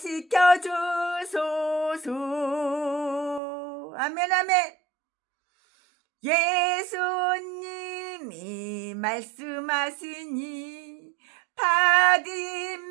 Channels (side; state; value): left; drops out; at 3.4 s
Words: 주소서. 아멘 아멘. 예수님이 말씀하시니